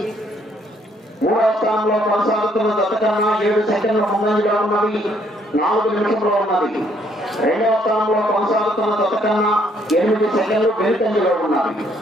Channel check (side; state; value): both; normal; correlation 0.67